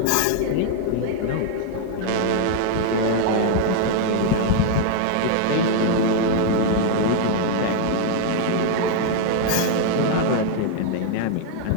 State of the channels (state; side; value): different; both; correlation 0.00